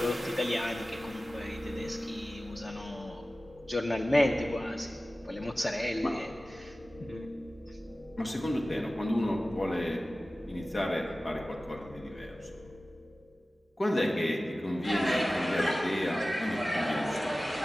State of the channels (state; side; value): normal; both; correlation 0.96